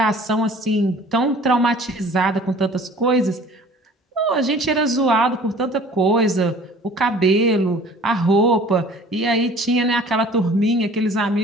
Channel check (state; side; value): normal; both; correlation 0.49